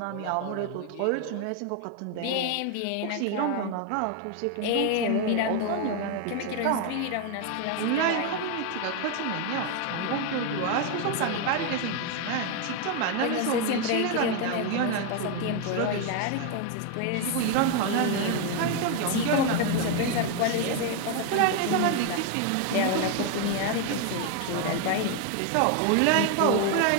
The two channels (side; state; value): both; different; correlation 0.01